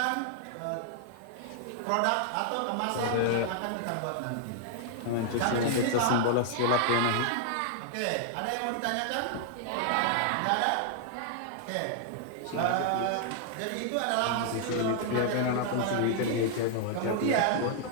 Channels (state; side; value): different; both; correlation -0.01